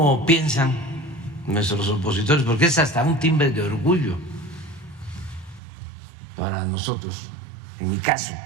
piensan nuestros opositores, porque es hasta un timbre de orgullo para nosotros, en mi caso,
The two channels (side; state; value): left; drops out; at 5.6 s